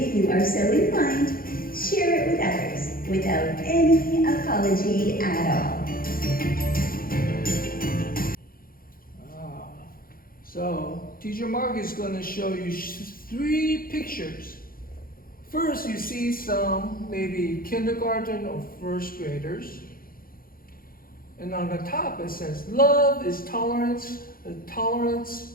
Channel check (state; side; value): late; right; 0.42 ms